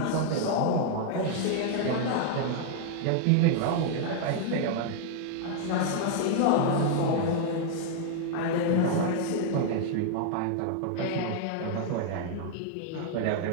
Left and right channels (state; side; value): different; both; correlation 0.00